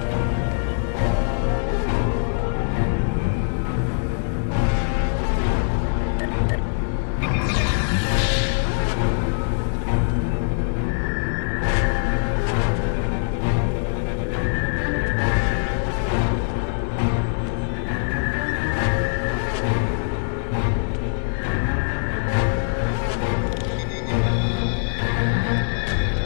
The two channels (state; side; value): silent; right; 61 dB below the other